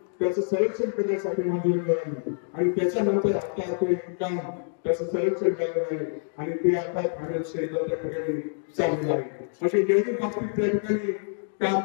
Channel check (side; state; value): right; silent; digital silence